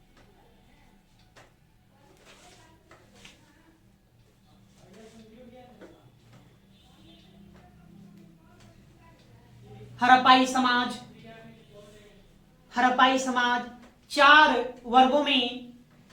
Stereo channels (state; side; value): identical; both; correlation 1.00